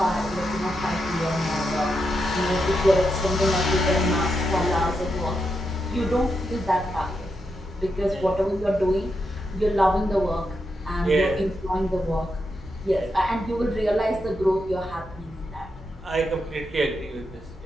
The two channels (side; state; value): both; normal; correlation 0.84